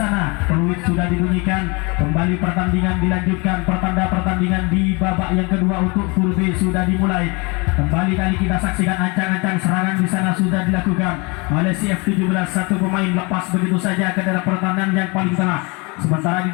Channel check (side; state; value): right; quieter; 28.7 dB